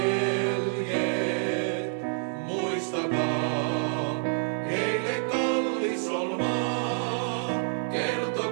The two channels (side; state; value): left; silent; 59 dB below the other